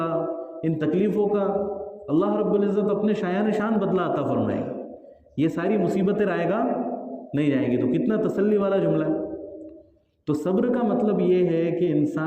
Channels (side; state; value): both; identical; correlation 1.00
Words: ان تکلیفوں کا اللہ رب العزت اپنے شایان شان بدلہ عطا فرمائے گا۔ یہ ساری مصیبتیں رائے گا نہیں جائیں گی۔ تو کتنا تسلی والا جملہ ہے۔ تو صبر کا مطلب یہ ہے کہ